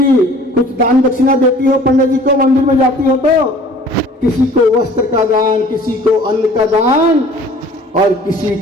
कुछ दान दक्षिणा देती हो पंडित जी को, मंदिर में जाती हो तो? किसी को वस्त्र का दान, किसी को अन्न का दान, और किसी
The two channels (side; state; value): both; normal; correlation 0.49